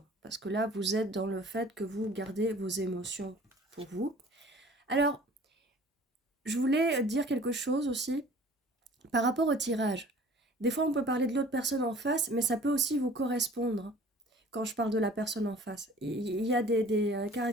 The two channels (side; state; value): both; normal; correlation 0.48